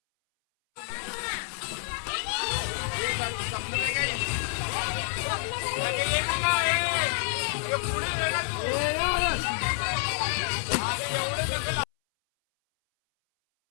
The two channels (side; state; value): right; silent; 59 dB below the other